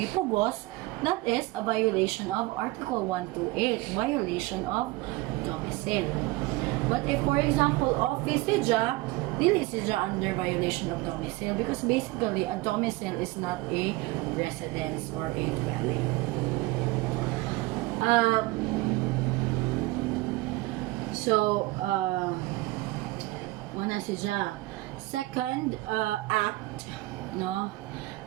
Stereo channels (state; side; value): quieter; left; 20.8 dB